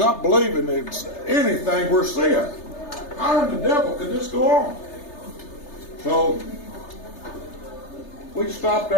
believing it's anything we're seeing. How in the devil could this go on? So we stopped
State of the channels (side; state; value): right; late; 3.3 ms